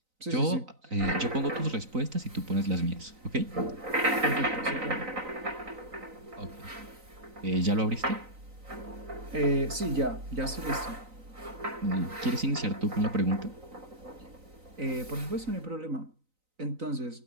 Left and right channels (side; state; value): left; late; 3.9 ms